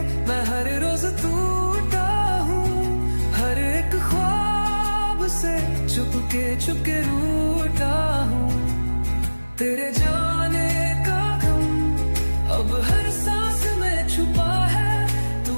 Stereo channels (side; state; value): both; inverted; correlation -1.00